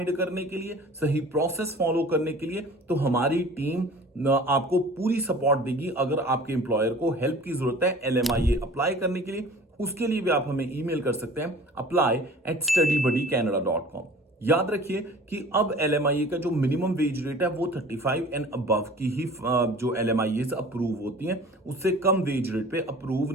करने के लिए, सही प्रोसेस फॉलो करने के लिए, तो हमारी टीम आपको पूरी सपोर्ट देगी। अगर आपके एम्प्लॉयर को हेल्प की जरूरत है LMIA अप्लाई करने के लिए, उसके लिए भी आप हमें ईमेल कर सकते हैं apply@studybuddycanada.com। याद रखिए कि अब LMIA का जो मिनिमम वेज रेट है वो 35 एंड अबव की ही जो LMIAs अप्रूव होती हैं, उससे कम वेज रेट पे अप्रूव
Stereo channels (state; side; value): normal; both; correlation 0.44